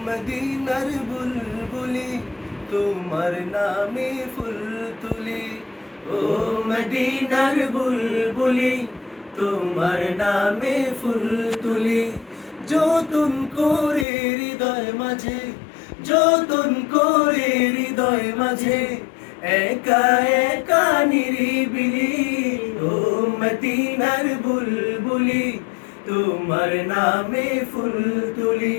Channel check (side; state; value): right; drops out; at 14.1 s